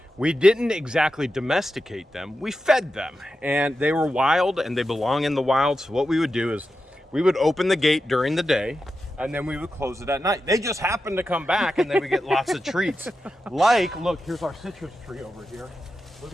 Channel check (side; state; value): both; normal; correlation 0.90